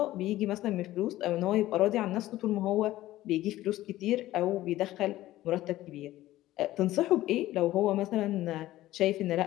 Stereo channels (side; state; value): right; quieter; 15.5 dB